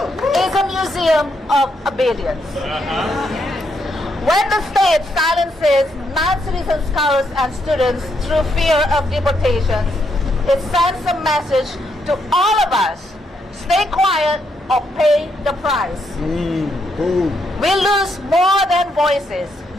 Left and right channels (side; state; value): both; normal; correlation 0.77